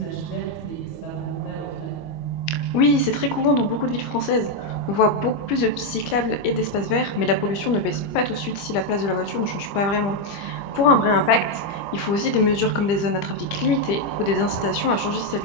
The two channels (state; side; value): late; right; 25 ms